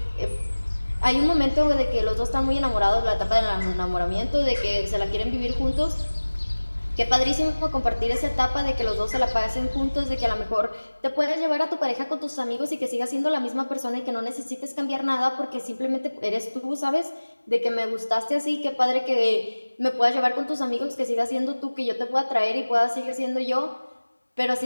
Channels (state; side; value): inverted; both; correlation -1.00